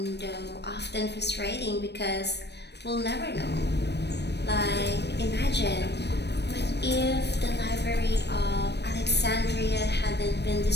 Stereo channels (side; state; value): right; late; 0.49 ms